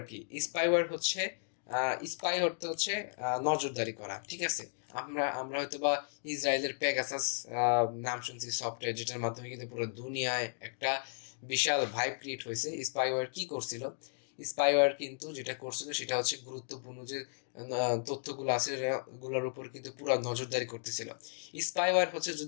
কি? স্পাই অর্থ হচ্ছে নজরদারি করা। ঠিক আছে, আমরা হয়তো বা ইসরায়েলের পেগাসাস নাম শুনছি সফটওয়্যার, যেটার মাধ্যমে কিন্তু পুরো দুনিয়ায় একটা বিশাল ভাইব ক্রিয়েট হয়েছে। স্পাইওয়্যার কি করছিল? স্পাইওয়্যার কিন্তু যেটা করছিল সেটা হচ্ছে গুরুত্বপূর্ণ যে তথ্যগুলো আছে গুলোর উপর কিন্তু পুরো নজরদারি করতেছিল। স্পাইওয়্যার হচ্ছে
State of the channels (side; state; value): right; silent; digital silence